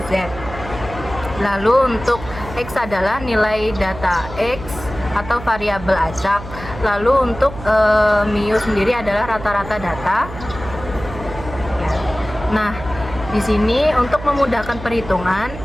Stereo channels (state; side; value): noise; right; hum, 12 dB below the sound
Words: Z. Lalu untuk X adalah nilai data X atau variabel acak. Lalu untuk mu sendiri adalah rata-rata data. Nah, di sini untuk memudahkan perhitungan,